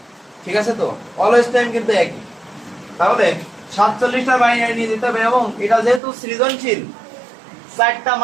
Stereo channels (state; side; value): drops out; left; at 6.0 s